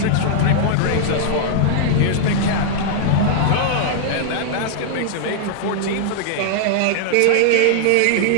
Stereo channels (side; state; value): both; different; correlation -0.01